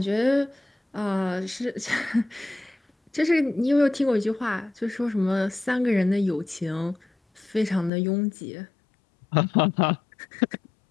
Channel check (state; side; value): drops out; right; at 7.9 s